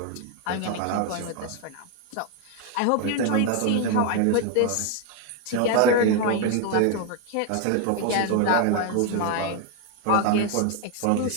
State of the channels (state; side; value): different; both; correlation 0.01